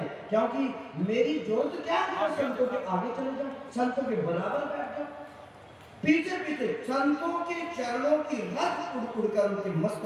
क्योंकि मेरी जरूरत क्या है? संतों के आगे चले जाओ, संतों के बराबर बैठ जाओ, पीछे पीछे संतों के चरणों की रस उड़ उड़कर उनके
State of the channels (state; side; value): identical; both; correlation 1.00